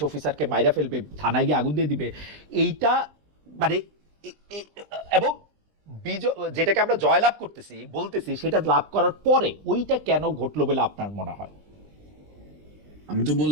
অফিসারকে মাইরা ফেলবে, থানায় গিয়ে আগুন দিয়ে দিবে। এইটা মানে এবং যেটাকে আমরা জয়লাভ করতেছি বলতেছি, সেটা লাভ করার পরে ওইটা কেন ঘটলো বলে আপনার মনে হয়? আমি তো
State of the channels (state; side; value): late; left; 20 ms